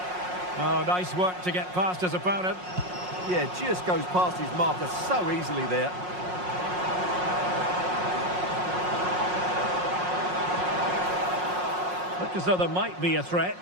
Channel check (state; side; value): late; left; 5.5 ms